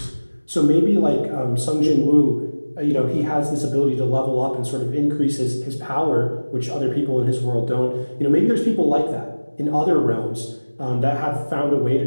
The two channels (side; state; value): both; inverted; correlation -1.00